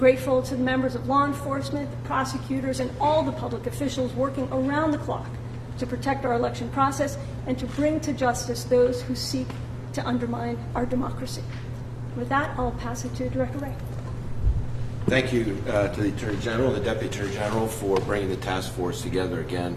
to the members of law enforcement, the prosecutors, and all the public officials working around the clock to protect our election process and to bring to justice those who seek to undermine our democracy. With that, I'll pass it to Director Wray. Thank you to the Attorney General, the Deputy Attorney General, for bringing the task force together again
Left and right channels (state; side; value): identical; both; correlation 1.00